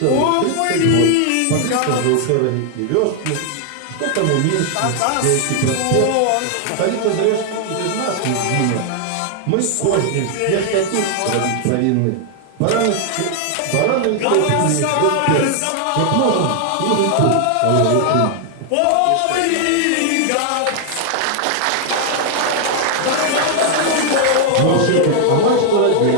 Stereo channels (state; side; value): different; both; correlation 0.00